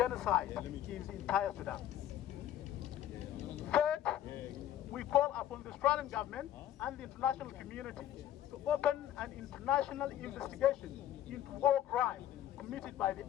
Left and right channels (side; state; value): right; quieter; 11.7 dB